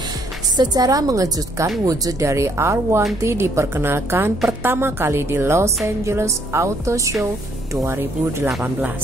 Secara mengejutkan, wujud dari R1T diperkenalkan pertama kali di Los Angeles Auto Show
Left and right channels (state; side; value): normal; both; correlation 0.67